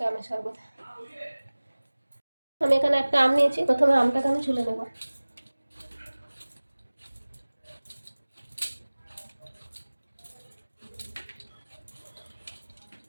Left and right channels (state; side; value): inverted; both; correlation -1.00